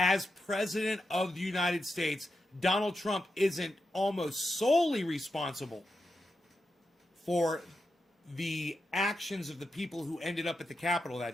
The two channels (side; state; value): both; normal; correlation 0.88